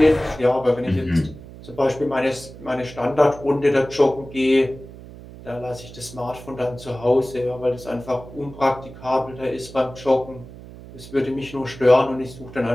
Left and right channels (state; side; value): noise; right; hum, 16 dB below the sound